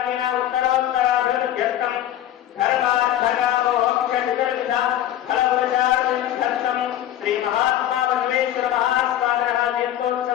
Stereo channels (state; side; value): quieter; right; 12.1 dB